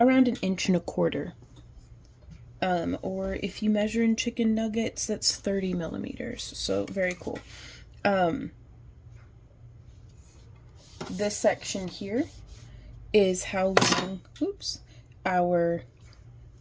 around 1.25 inches. Or if you measure in chicken nuggets, that's 30 millimeters. So very cool. This section here is how long, oops, our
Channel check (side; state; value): both; identical; correlation 1.00